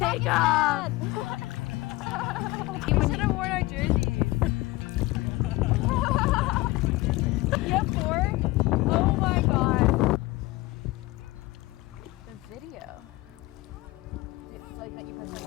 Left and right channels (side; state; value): right; quieter; 20.4 dB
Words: take off. We should have worn our jerseys. You have 4? Oh my god. The video. It's like that you press on